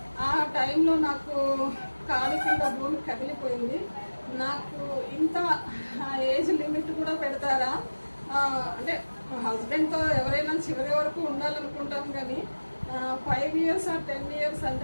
ఆ టైంలో నాకు కాలు కింద భూమి కదిలిపోయింది. నాకు ఇంత ఏజ్ లిమిట్ కూడా పెడతారా? అంటే హస్బెండ్తో ఎవరైనా చివరి వరకు ఉండాలనుకుంటాం, కానీ 5 years or 10 years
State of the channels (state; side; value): inverted; both; correlation -1.00